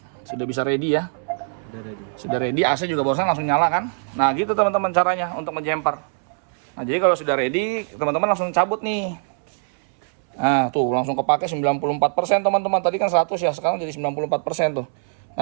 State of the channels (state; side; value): silent; left; 64 dB below the other